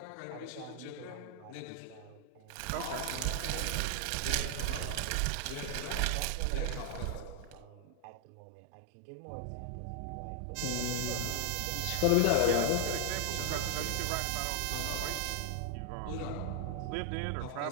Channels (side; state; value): both; different; correlation 0.00